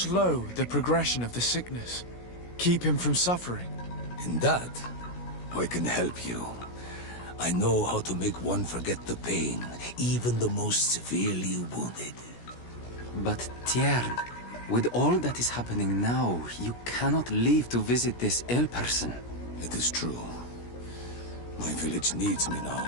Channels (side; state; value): right; late; 17 ms